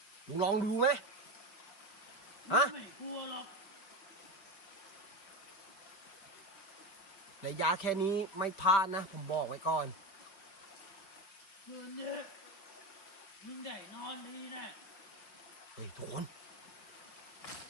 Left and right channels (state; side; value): late; right; 5.1 ms